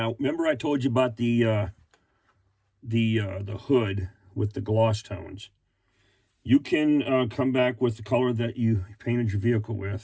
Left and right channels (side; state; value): both; identical; correlation 1.00